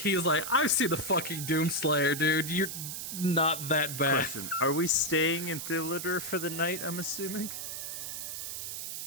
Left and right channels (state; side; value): noise; right; hiss, 6 dB below the sound